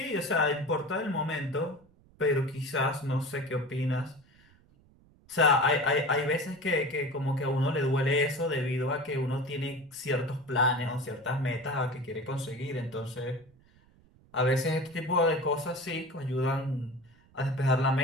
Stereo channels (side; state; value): right; noise; rumble, 29 dB below the sound